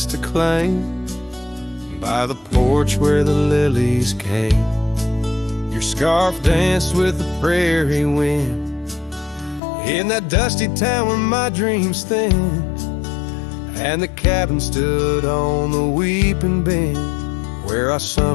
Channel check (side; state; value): right; drops out; at 9.6 s